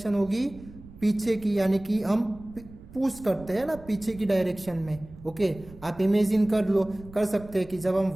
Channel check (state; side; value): noise; right; rumble, 19 dB below the sound